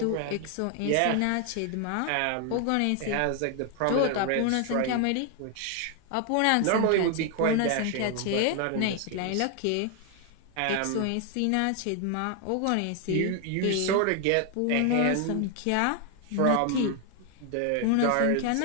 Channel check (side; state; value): both; different; correlation 0.00